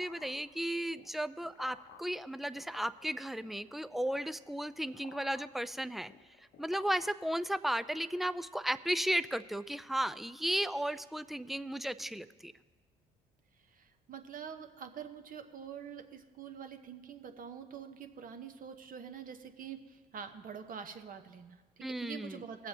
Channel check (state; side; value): normal; both; correlation 0.92